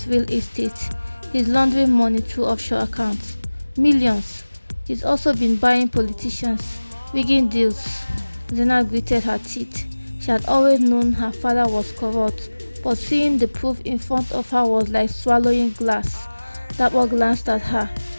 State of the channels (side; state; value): both; inverted; correlation -1.00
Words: real estate. He's laundering money through offshore accounts. Millions. He's also been buying politicians, rigging deals. Zena gritted her teeth. She had always known her father was corrupt, but seeing the proof in front of her was like swallowing glass. Dapper glanced at her.